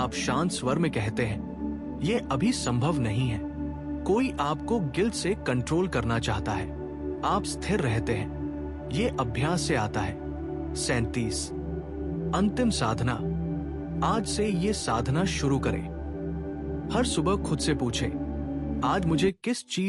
शांत स्वर में कहते हैं, यह अभी संभव नहीं है। कोई आपको गिल्ट से कंट्रोल करना चाहता है, आप स्थिर रहते हैं, यह अभ्यास से आता है। 37 अंतिम साधना। आज से ये साधना शुरू करें। हर सुबह खुद से पूछें, आज मुझे किस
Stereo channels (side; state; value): both; identical; correlation 1.00